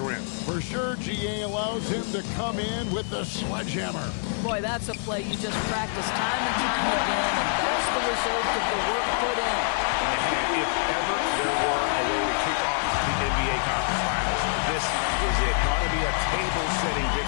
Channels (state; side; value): silent; right; digital silence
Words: rim. For sure, GA allows him to come in with the sledgehammer. Boy, that's a play you just practice time and time again, and that's the result of the work put in. And if ever there were a way to kick off the NBA Conference Finals, this was it. Going to be a table-setting